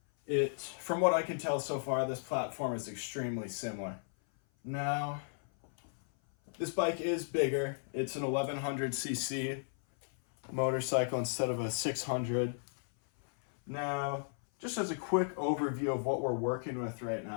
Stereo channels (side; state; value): right; silent; 54 dB below the other